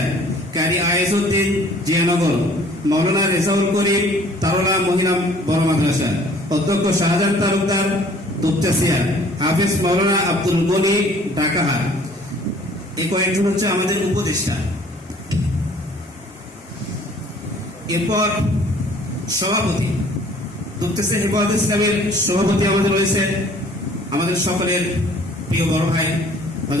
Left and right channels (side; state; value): both; normal; correlation 0.54